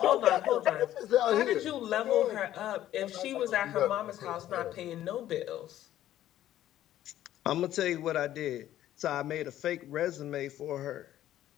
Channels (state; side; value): quieter; right; 12.8 dB